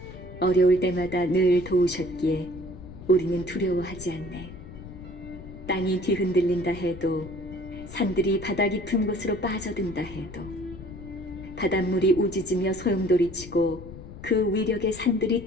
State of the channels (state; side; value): noise; left; rumble, 14 dB below the sound